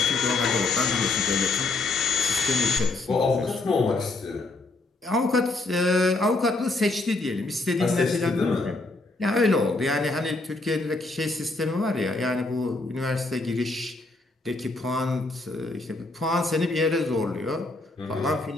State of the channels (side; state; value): right; quieter; 3.2 dB